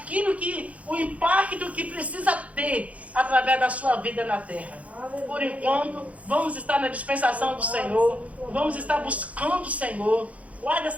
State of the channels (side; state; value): left; late; 0.067 ms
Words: o impacto que precisa ter através da sua vida na terra. Aleluia. Por enquanto, vamos estar na dispensação do Senhor, vamos estar buscando o Senhor. Guarde